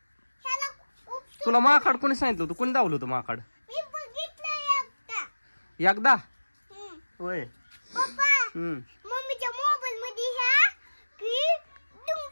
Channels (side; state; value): both; inverted; correlation -1.00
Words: तुला माकाड कोणी सांगितलं होतं? कोणी दावलं होतं माकाड? एकदा होय. मम्मीच्या मोबाईल मध्ये